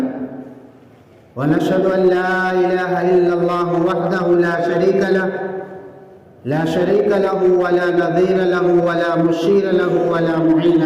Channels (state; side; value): identical; both; correlation 1.00